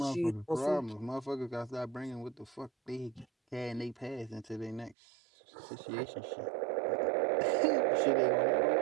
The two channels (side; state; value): left; drops out; at 5.0 s